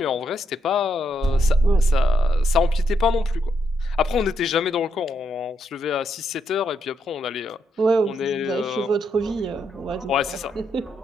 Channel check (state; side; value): normal; both; correlation 0.79